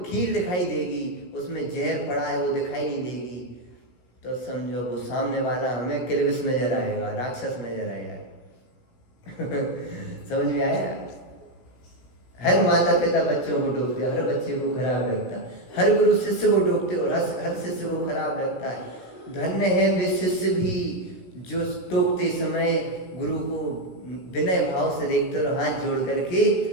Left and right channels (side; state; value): right; late; 17 ms